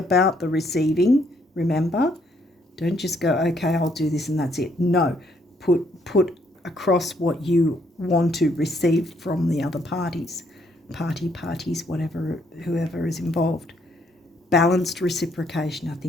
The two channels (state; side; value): normal; both; correlation 0.70